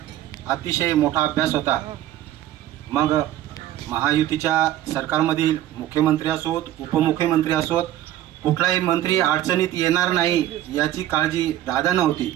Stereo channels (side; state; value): left; quieter; 13.0 dB